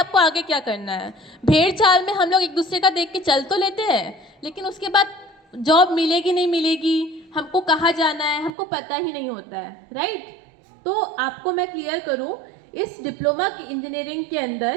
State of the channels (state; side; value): drops out; left; at 8.5 s